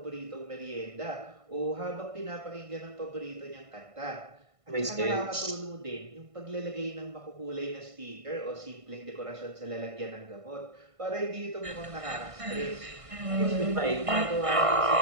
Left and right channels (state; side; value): late; left; 1.5 ms